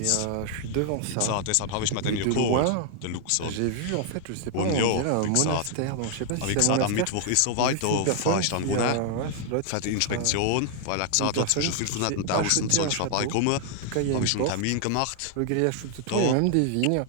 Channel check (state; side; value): different; both; correlation 0.00